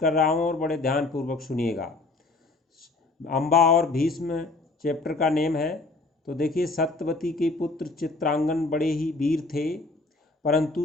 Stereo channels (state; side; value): quieter; right; 3.4 dB